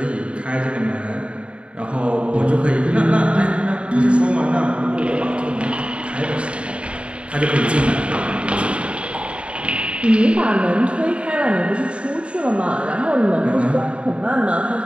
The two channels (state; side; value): late; left; 0.059 ms